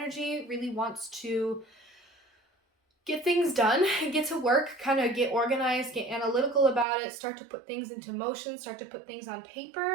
really wants to get things done, get to work, kind of get organized, get analytical about it, start to put things into motion, start to put things on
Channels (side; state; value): left; drops out; at 6.9 s